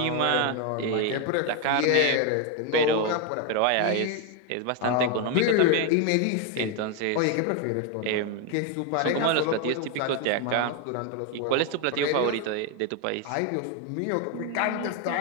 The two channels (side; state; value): both; different; correlation 0.01